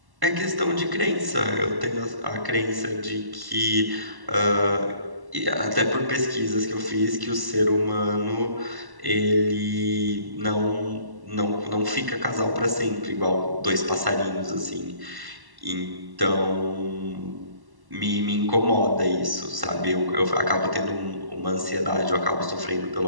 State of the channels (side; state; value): left; late; 1.1 ms